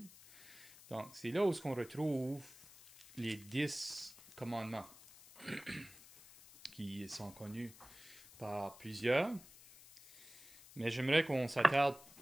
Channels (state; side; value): noise; left; hiss, 20 dB below the sound